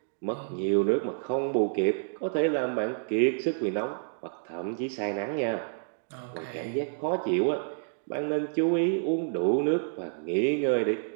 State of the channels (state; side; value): silent; left; digital silence